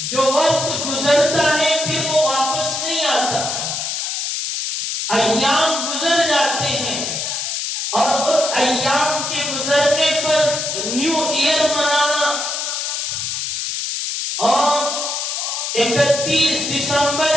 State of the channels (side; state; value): left; noise; hiss, 2 dB below the sound